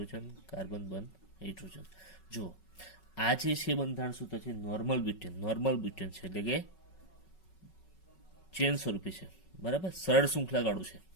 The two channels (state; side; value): late; right; 5.3 ms